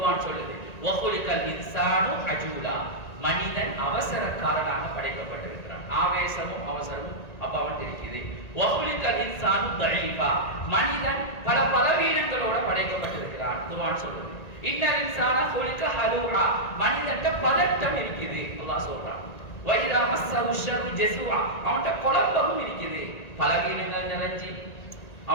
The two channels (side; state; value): right; late; 1.9 ms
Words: சொல்லுது. வஹுலிகல் இன்சானு அஜூலா. மனிதன் அவசரக்காரனாக படைக்கப்பட்டிருக்கிறான். ஆவேசமும் அவசரமும் அப்ப அவன் இருக்குது. வஹுலிகல் இன்சானு தஈஃபா. மனிதன் பல பலவீனங்களோட படைக்கப்பட்டிருக்கிறான். குர்ஆன் சொல்லுது. இன்னல் இன்சான ஹுலிக ஹலூஆ. மனிதன்ட்ட பதட்டம் இருக்குது அல்லாஹ் சொல்றான். வைதா மஸ்ஸஹு ஷர்ரு ஜஸூஆ. அவன்ட்ட குழப்பமும் இருக்குது. பலவீனங்கள் நிறைஞ்சி